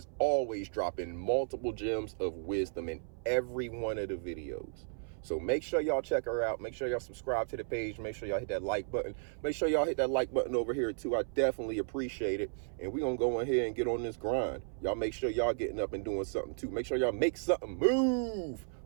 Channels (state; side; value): silent; left; 55 dB below the other